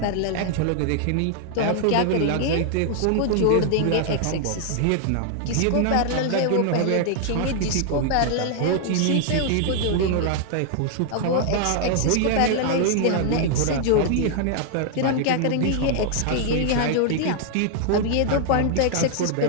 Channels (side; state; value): both; different; correlation 0.00